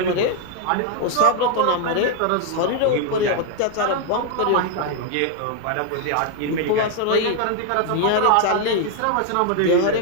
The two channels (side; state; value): both; different; correlation 0.00